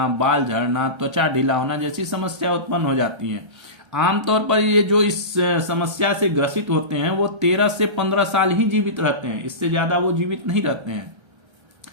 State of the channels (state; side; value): late; left; 1.3 ms